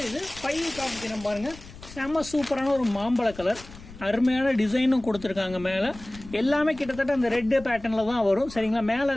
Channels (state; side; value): noise; left; rumble, 17 dB below the sound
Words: இது 5 காமிக்கிறேன் பாருங்க. செம்ம சூப்பரான ஒரு மாம்பழ கலர். அருமையான டிசைனும் கொடுத்துருக்காங்க. மேல எல்லாமே கிட்டத்தட்ட அந்த ரெட் பேட்டர்ன்ல தான் வரும். சரிங்களா, மேல